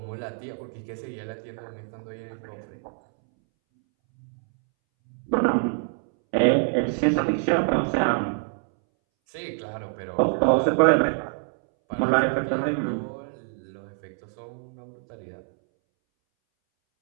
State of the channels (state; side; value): silent; left; 61 dB below the other